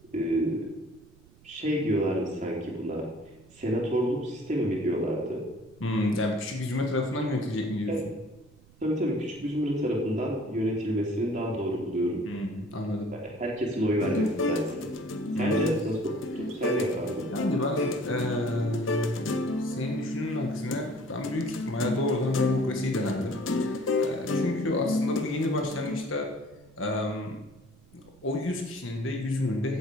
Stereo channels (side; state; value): right; noise; rumble, 26 dB below the sound